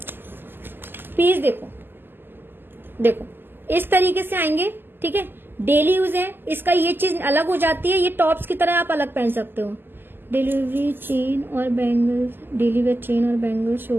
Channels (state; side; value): late; left; 0.096 ms